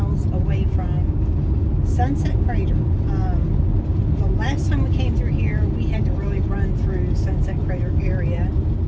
away from Sunset Crater. The last time we came through here, we had to really run through Sunset Crater area.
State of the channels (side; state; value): both; identical; correlation 1.00